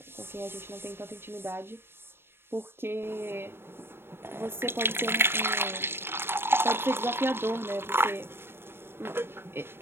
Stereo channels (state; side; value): late; left; 0.11 ms